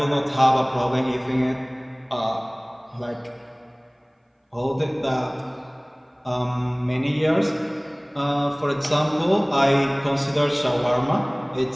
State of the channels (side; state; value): both; identical; correlation 1.00